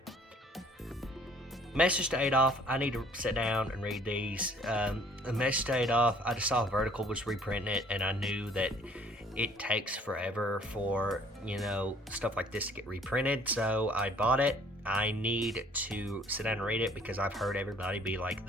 Message to Adolf, I need to sit down and read these. The Message to Adolf, I just saw Vertical was reprinting it, and I knew that it takes forever for, stuff like this to get reprinted, so I bought it. I need to sit down and read it because I've heard everybody be like,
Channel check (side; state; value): both; normal; correlation 0.57